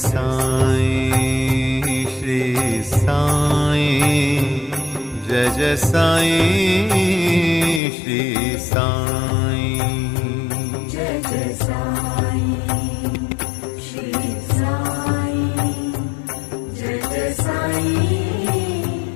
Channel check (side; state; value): right; drops out; at 7.8 s